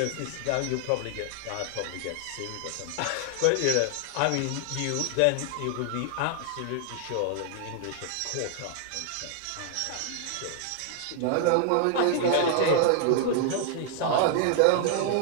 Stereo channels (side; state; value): both; different; correlation 0.00